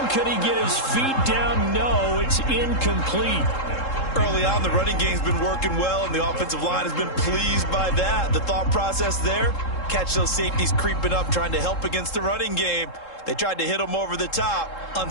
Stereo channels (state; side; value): late; right; 3.7 ms